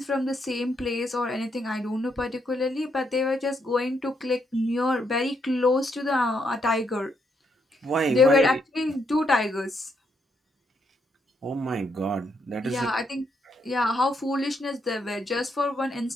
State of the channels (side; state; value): both; normal; correlation 0.77